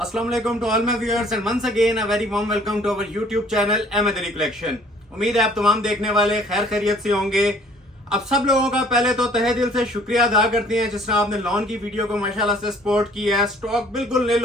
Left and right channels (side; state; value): both; normal; correlation 0.56